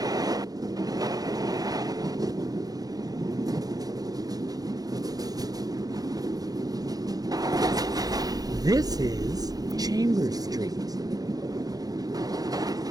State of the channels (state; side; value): late; left; 0.18 ms